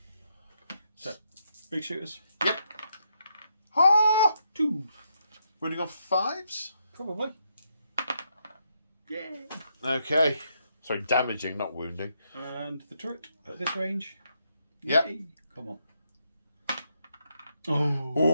So, big shooters. Yep. Ah! 2. Running on 5s? Probably. Yeah. Okay. Sorry, damaging, not wounding. And the turret at this range. Yep. Yay. Come on. Oh.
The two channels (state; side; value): inverted; both; correlation -0.78